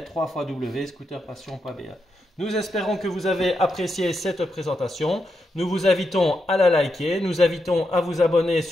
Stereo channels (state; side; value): normal; both; correlation 0.84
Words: www.scooterpassion.be. Nous espérons que vous avez apprécié cette présentation. Nous vous invitons à la liker, nous invitons à vous abonner